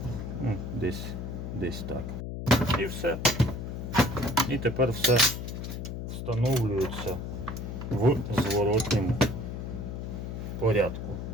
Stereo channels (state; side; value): noise; left; hum, 6 dB below the sound